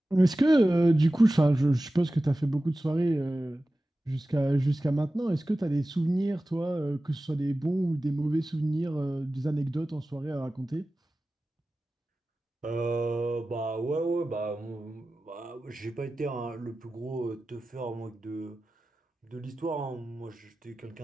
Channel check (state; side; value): normal; both; correlation 0.95